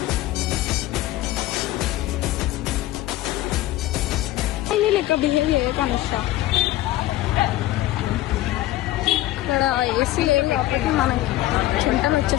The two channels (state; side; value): quieter; right; 15.7 dB